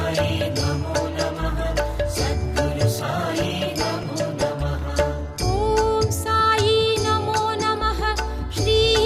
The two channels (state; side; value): identical; both; correlation 1.00